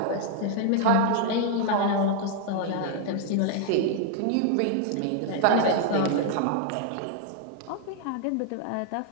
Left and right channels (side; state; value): both; different; correlation 0.00